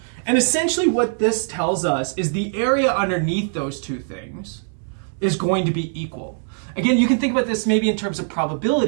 And essentially what this tells us is the area underneath those two things is going to be equal. Again, you can think about this maybe in terms of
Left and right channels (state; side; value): silent; left; 64 dB below the other